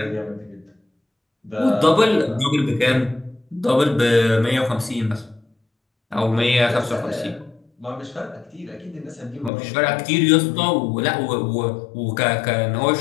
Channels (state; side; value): drops out; right; at 9.5 s